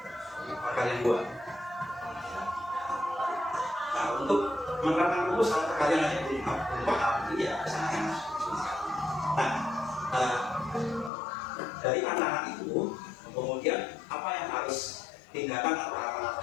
Perkalian 2. Nah, untuk menerapkan rumus kalau perkalian aja belum paham, ini ya sangat susah. Nah, dari anak-anak itu kemudian apa yang harus tindakan atau apa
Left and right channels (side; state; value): right; drops out; at 11.1 s